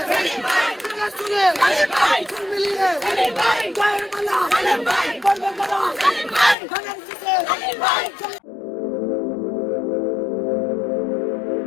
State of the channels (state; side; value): drops out; right; at 6.6 s